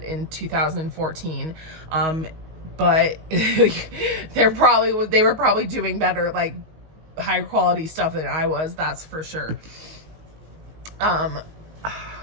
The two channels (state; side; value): late; left; 19 ms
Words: in 2014, but they were probably doing better, like high quality stuff than I was, that's for sure.